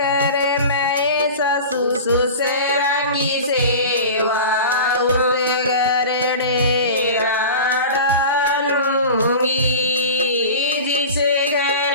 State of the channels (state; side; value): inverted; both; correlation -0.34